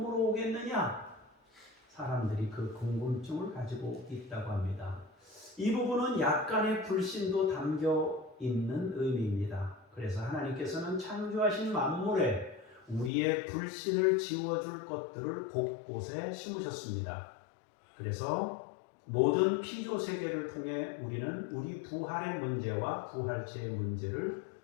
오겠느냐? 사람들이 그 궁금증을 가지고 있다고 합니다. 이 부분은 약간의 불신도 담겨 있는 의미입니다. 그래서 하나님께서는 창조하신 만물에 우리의 불신을 지워줄 것들을 곳곳에 심으셨습니다. 그래서 모든 피조 세계를 통해 우리는 우리 부활의 문제와 부활체의 문제를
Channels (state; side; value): drops out; right; at 13.1 s